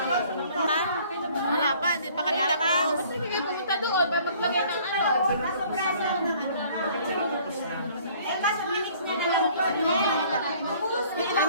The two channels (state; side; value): inverted; both; correlation -0.55